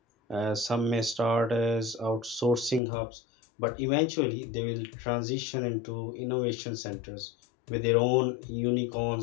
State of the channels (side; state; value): right; drops out; at 2.8 s